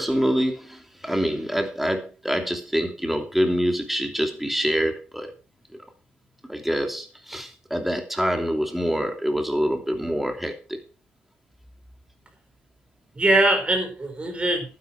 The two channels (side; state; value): both; normal; correlation 0.89